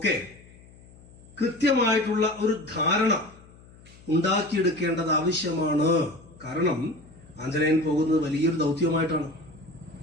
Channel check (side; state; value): left; noise; hum, 23 dB below the sound